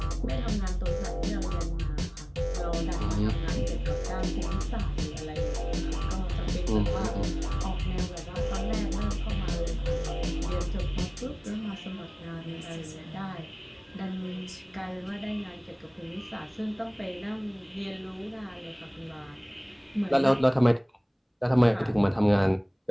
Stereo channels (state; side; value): identical; both; correlation 1.00